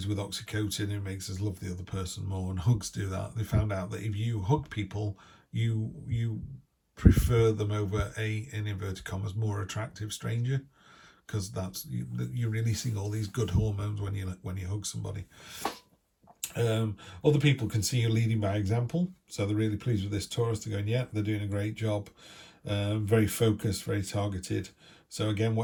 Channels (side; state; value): both; identical; correlation 1.00